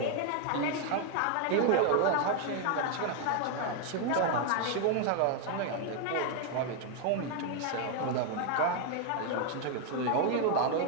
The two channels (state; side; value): different; both; correlation 0.01